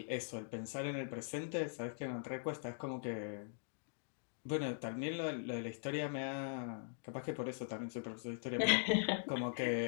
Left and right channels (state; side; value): silent; right; digital silence